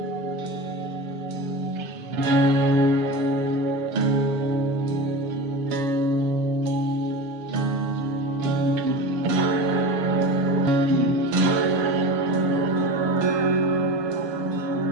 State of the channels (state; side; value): late; left; 7.1 ms